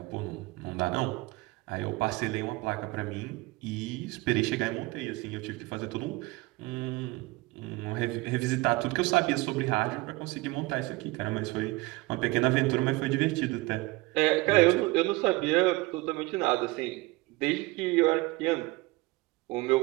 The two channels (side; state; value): left; quieter; 22.5 dB